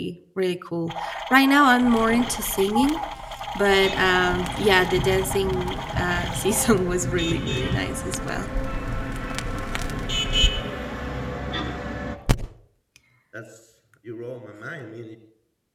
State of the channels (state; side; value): identical; both; correlation 1.00